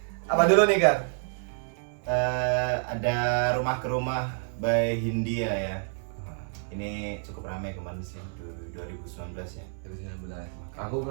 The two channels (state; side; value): silent; left; 59 dB below the other